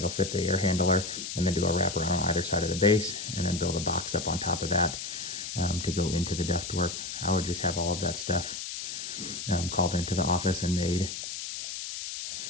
fit the air handler, and then do a wraparound on either side of the base, and then build a box up on top of that to go into the ductwork. I would just have all of that stuff called into the office and made,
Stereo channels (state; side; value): noise; left; hiss, 6 dB below the sound